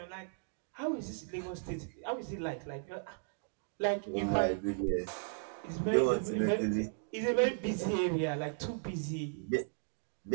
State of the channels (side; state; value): left; silent; digital silence